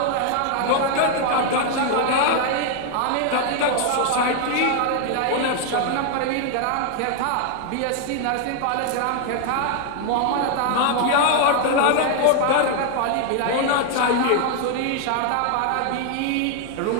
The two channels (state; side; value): different; both; correlation 0.00